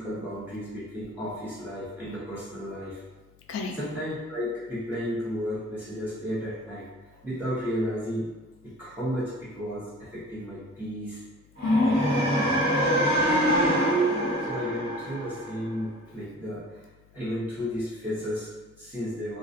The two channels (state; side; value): noise; left; hum, 28 dB below the sound